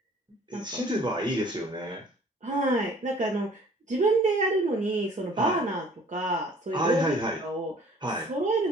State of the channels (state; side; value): normal; both; correlation 0.53